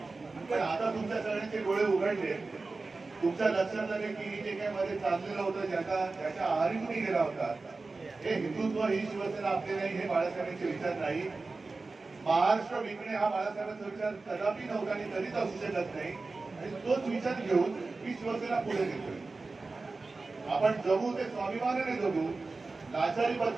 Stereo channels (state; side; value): quieter; left; 3.7 dB